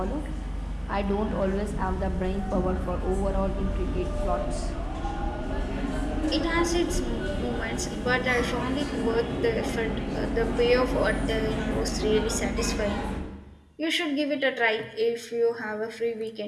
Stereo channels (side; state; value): both; identical; correlation 1.00